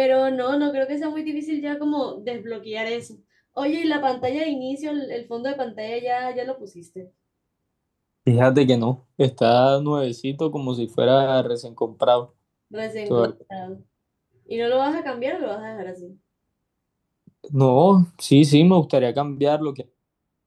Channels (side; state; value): both; identical; correlation 1.00